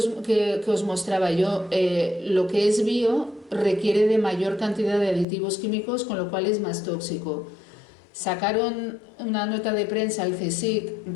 que os mostraba yo, lo que es bio requiere de mayor cantidad de aditivos químicos, con lo cual es más tóxico. Sacaron una nota de prensa al CSIC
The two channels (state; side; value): drops out; right; at 5.2 s